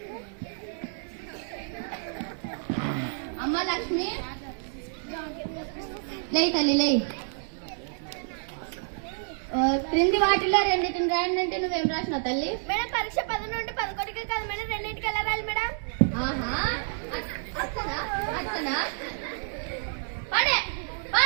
అమ్మ లక్ష్మి లే తల్లి లే. క్రింది వాటిలో రెండింటిని రాయండి అంటే నువ్వేం రాసినావు తల్లి? మేడం పరీక్ష 10 నుండి 11కి కాదు మేడం, 2ంటికి ఎలా రాయాలి మేడం? ఆహా అచ్చనా అచ్చనా. పడే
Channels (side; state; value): left; silent; digital silence